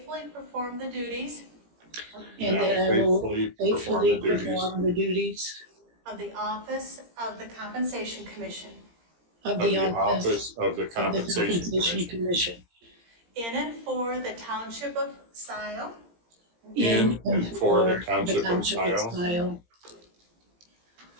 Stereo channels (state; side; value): late; left; 17 ms